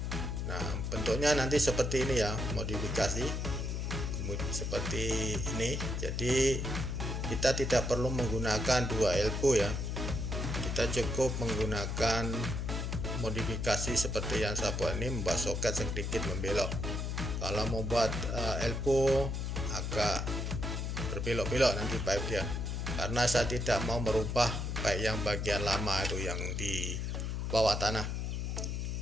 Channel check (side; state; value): left; noise; hum, 2 dB below the sound